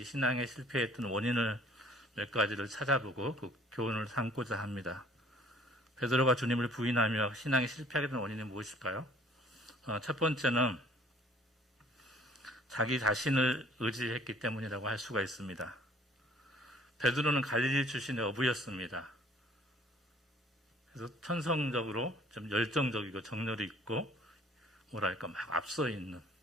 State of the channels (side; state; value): both; normal; correlation 0.55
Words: 신앙의 실패했던 원인을 몇 가지를 찾아보고 그 교훈을 삼고자 합니다. 베드로가 주님을 부인하며 신앙이 실패하게 된 원인이 무엇일까요? 첫 번째는 자기 자신을 의지했기 때문이라고 할 수가 있습니다. 베드로는 갈릴리 출신의 어부였습니다. 그래서 천성적으로 좀 열정적이고 정열이 있고 뭐랄까 막 앞서 있는